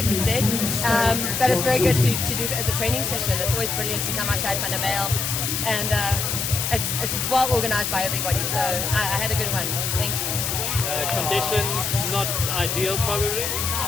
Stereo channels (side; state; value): left; noise; hiss, 1 dB below the sound